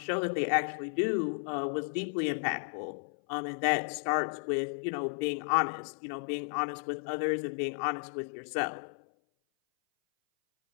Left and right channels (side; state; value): right; silent; 56 dB below the other